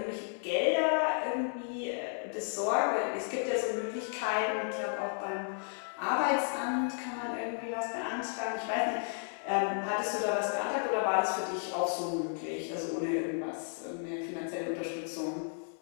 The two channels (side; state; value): right; silent; 56 dB below the other